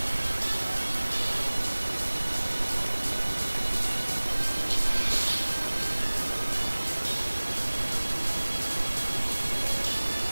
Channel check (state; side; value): inverted; both; correlation -1.00